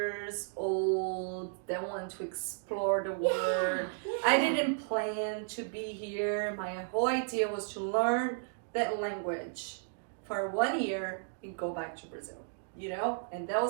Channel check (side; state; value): left; silent; digital silence